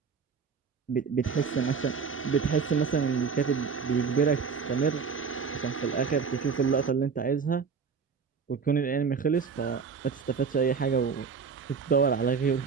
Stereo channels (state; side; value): quieter; left; 5.7 dB